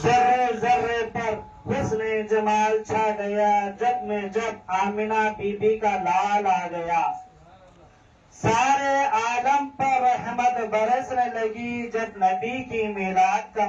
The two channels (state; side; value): identical; both; correlation 1.00